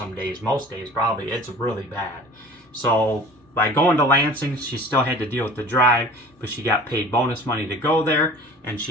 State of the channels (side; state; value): both; normal; correlation 0.43